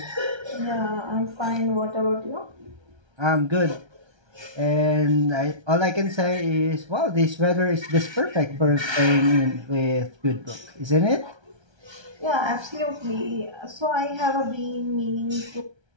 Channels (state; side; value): late; left; 1.3 ms